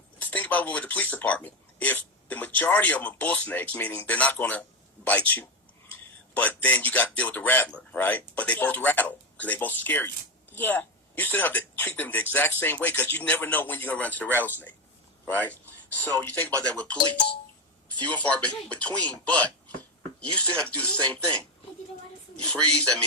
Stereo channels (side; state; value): both; normal; correlation 0.12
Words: think about it with the police department. If the majority of them are bull snakes, meaning they're not going to bite you, but then you got to deal with the rattler, right? But they both rattle because they both scare you. Yeah. You still have to treat them the exact same way because you never know when you're going to run into the rattlesnake, right? So you think about that with police. Few and far between, but you still have to do the same thing. You freeze, that